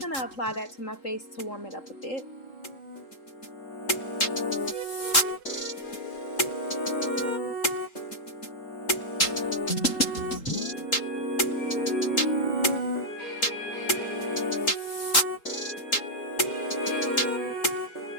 to apply that to my face to warm it up a bit.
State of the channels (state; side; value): late; right; 3.8 ms